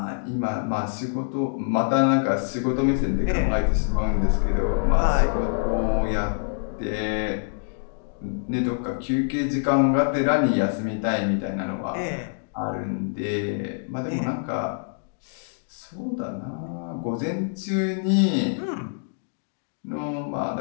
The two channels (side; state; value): right; silent; digital silence